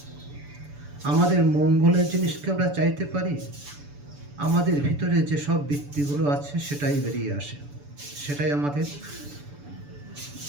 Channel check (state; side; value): late; left; 6.9 ms